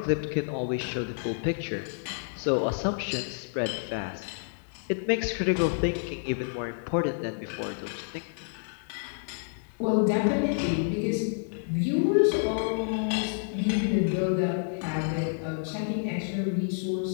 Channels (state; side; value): silent; right; digital silence